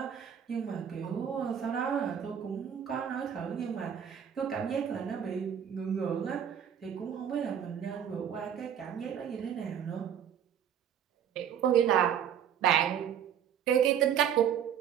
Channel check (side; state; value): left; quieter; 8.9 dB